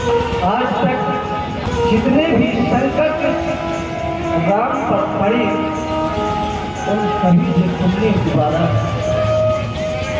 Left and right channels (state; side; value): identical; both; correlation 1.00